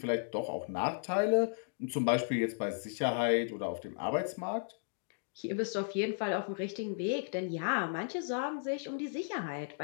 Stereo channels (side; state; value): right; silent; digital silence